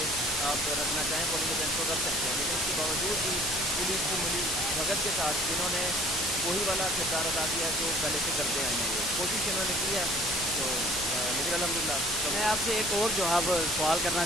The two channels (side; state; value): both; normal; correlation 0.52